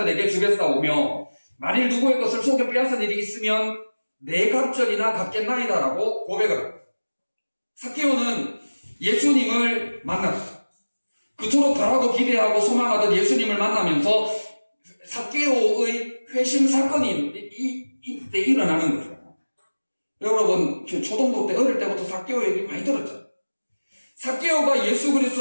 주겠사오며 만일 누구의 것을 속여 빼앗은 일이 있으면 내 갑절이나 갚겠나이다라고 고백을 합니다. 삭개오는 예수님을 만났어요. 그토록 바라고 기대하고 소망하던 예수님을 만나면서 삭개오의 회심 사건이 이때 일어나는 거죠. 여러분 초등부 때 어릴 때부터 삭개오 얘기 많이 들었죠. 삭개오가 예수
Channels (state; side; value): inverted; both; correlation -1.00